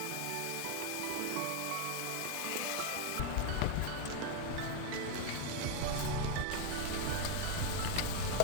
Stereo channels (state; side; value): different; both; correlation 0.01